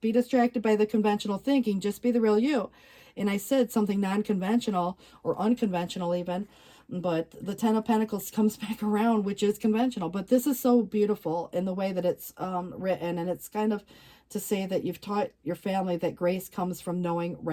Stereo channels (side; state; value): both; identical; correlation 1.00